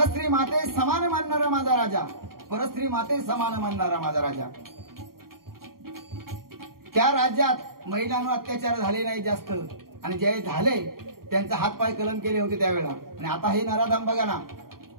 माते समान मानणारा माझा राजा, परस्त्री माते समान मानणारा माझा राजा. त्या राज्यात महिलांवर अत्याचार झाले नाही जास्त, आणि जे झाले त्यांचा हातपाय कलम केले होते त्यावेळेला. आणि आता हे नराधाम बघा ना,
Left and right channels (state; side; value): late; left; 0.93 ms